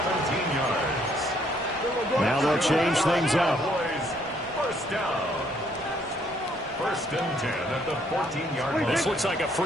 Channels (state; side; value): normal; both; correlation 0.67